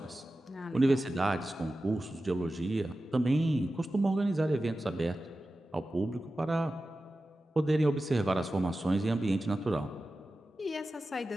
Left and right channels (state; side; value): normal; both; correlation 0.94